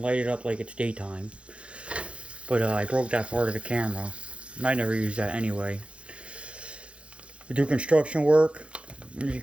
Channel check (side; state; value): left; late; 0.059 ms